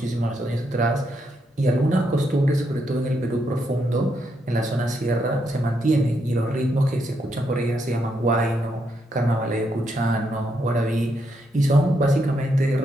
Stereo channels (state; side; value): normal; both; correlation 0.79